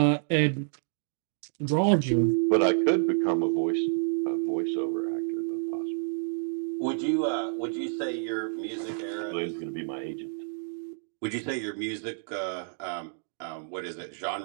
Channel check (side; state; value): left; silent; digital silence